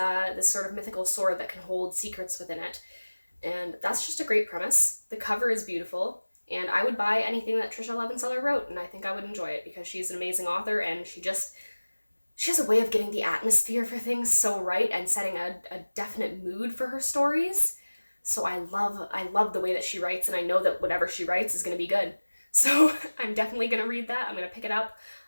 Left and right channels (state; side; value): inverted; both; correlation -1.00